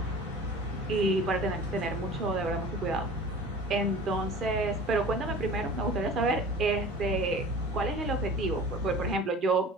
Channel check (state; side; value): normal; both; correlation 0.41